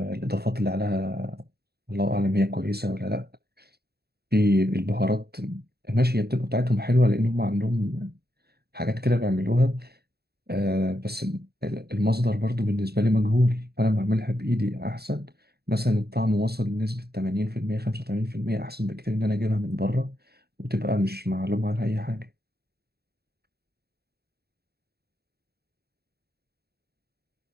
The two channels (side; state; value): left; late; 0.47 ms